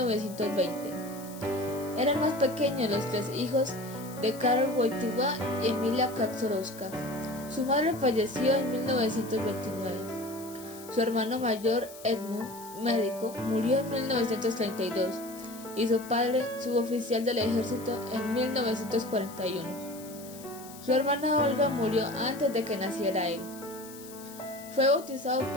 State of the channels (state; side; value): noise; left; hiss, 17 dB below the sound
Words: Era el más pequeño de los tres hijos de Karol Wojtyła y Emilia Kaczorowska. Su madre falleció en 1929. Su hermano mayor, Edmund, médico, murió en 1932 y su padre, suboficial del ejército, en 1941. Su hermana Olga murió antes de que naciera él. Fue bautizado